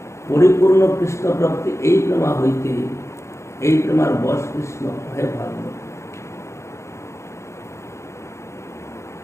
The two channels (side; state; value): right; late; 0.14 ms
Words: পরিপূর্ণ কৃষ্ণ প্রাপ্তি এই প্রেমা হইতে, এই প্রেমার বশ কৃষ্ণ হয় ভাগবত।